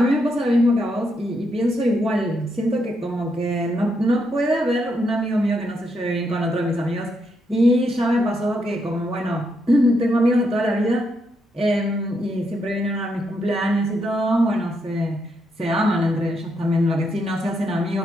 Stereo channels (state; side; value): normal; both; correlation 0.79